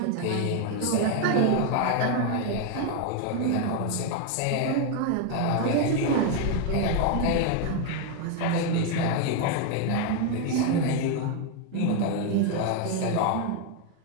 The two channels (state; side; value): different; both; correlation 0.01